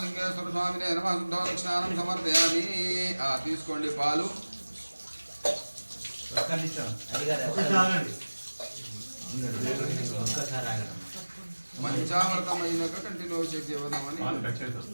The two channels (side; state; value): both; inverted; correlation -1.00